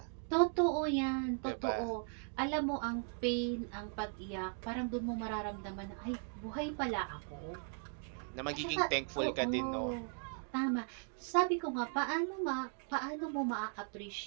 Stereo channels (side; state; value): left; silent; 53 dB below the other